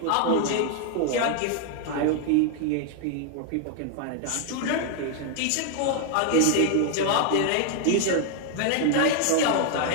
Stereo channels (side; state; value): both; different; correlation 0.00